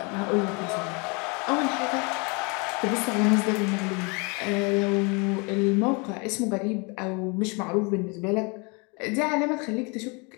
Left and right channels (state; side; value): quieter; right; 31.1 dB